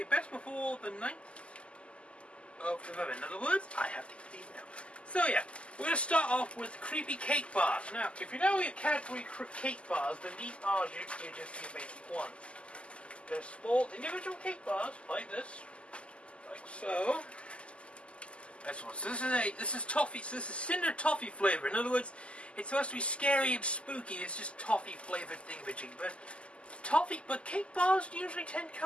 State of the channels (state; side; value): late; right; 0.055 ms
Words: best before the 9th of November. In other words, I have to eat these now. So yeah, we're going to start off with creepy cake bars. Now, if you know your Cadbury cake bars, then these are just your basic ones. They're small individual cake bars, like this. Like so. That's one. So this is toffee, so this is cinder toffee flavor. In other words, it's supposed to be scary and spooky. It's just toffee flavored thingamajig. But cake bars usually tend to